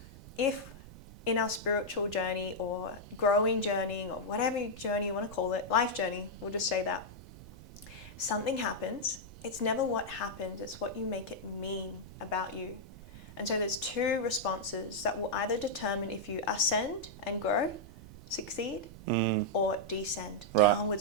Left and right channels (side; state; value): right; noise; rumble, 16 dB below the sound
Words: if in our spiritual journey or growing journey or whatever journey you want to call it, life journey, we'll just say that, something happens, it's never what happens, it's what you make it mean about you. And so there's 2 responses that will either determine if you ascend and grow, succeed, or descend, downward